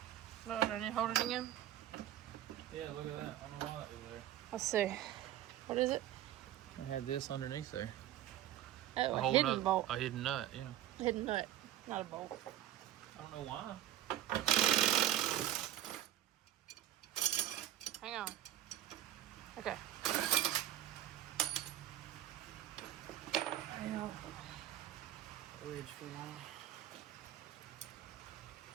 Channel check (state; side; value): quieter; left; 12.6 dB